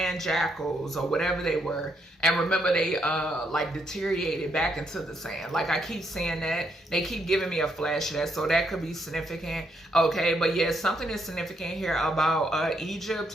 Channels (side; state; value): both; normal; correlation 0.76